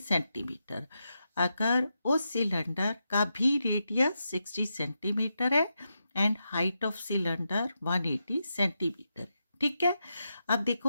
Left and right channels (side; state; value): both; inverted; correlation -0.86